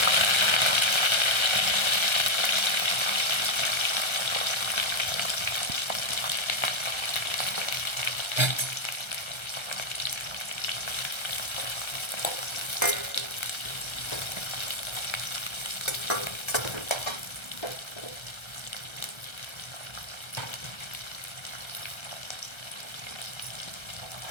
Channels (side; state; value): right; late; 1.3 ms